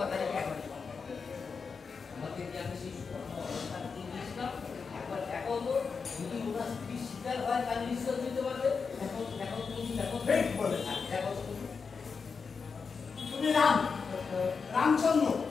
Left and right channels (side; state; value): right; quieter; 5.3 dB